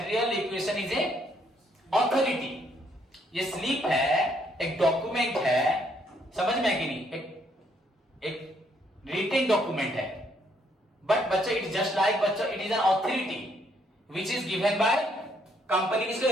requisition is a authority, ये स्लिप है, एक डॉक्यूमेंट है, समझ में आया कि नहीं, एक रिटेन डॉक्यूमेंट है, बट बच्चों इट जस्ट लाइक बच्चों it is an authority which is given by company. किसको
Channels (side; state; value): both; normal; correlation 0.70